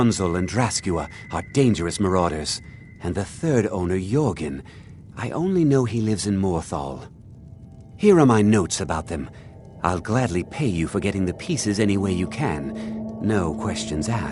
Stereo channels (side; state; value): both; identical; correlation 1.00